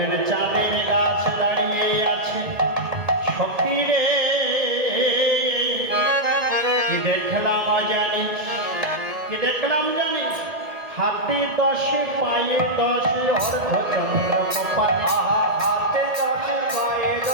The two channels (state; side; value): late; left; 2.0 ms